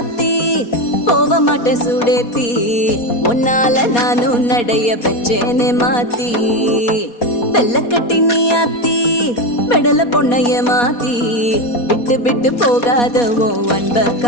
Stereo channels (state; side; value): late; right; 4.2 ms